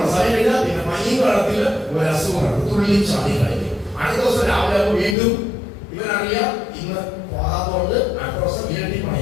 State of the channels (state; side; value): drops out; right; at 5.2 s